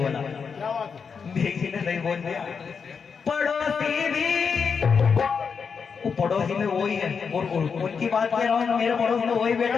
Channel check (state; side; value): quieter; right; 6.0 dB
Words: बेजी ने सही बोल दिया। पड़ोसी भी, वो पड़ोसी में वही है, और उनकी बात कह रहा हूँ, मेरे पड़ोस में वही बैठे